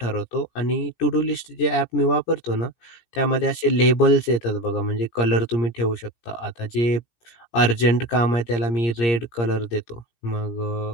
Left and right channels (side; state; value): right; late; 17 ms